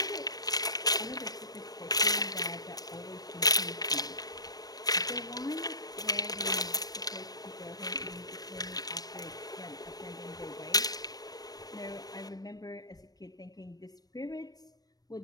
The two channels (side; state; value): right; late; 0.19 ms